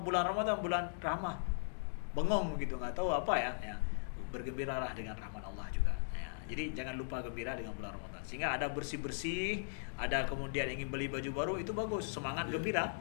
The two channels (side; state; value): right; silent; digital silence